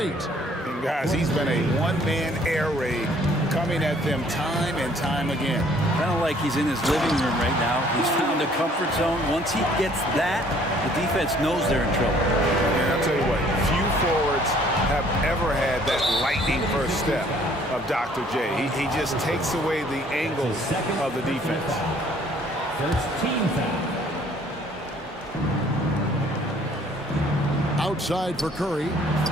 And guys, he's been a one-man air raid coming at them time and time again. Kind of like he's in his living room right now. He's found a comfort zone. Once he gets that, the defense knows they're in trouble. And I'll tell you what, few forwards have ever had that lightning first step of Dr. J. He just takes away the angles of the defense. First team foul. Outside for Curry.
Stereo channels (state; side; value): normal; both; correlation 0.59